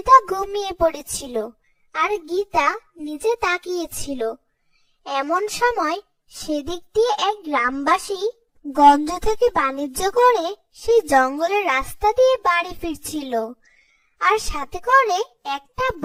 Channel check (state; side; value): identical; both; correlation 1.00